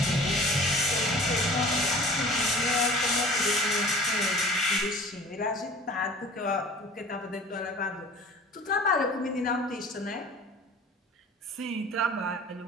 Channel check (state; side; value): normal; both; correlation 0.44